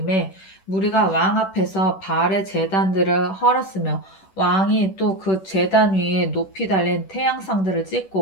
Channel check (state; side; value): late; right; 10 ms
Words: 무리가 왕 앞에서 바알의 제단들을 헐었으며 왕이 또 그 제단 위에 높이 달린 태양상들을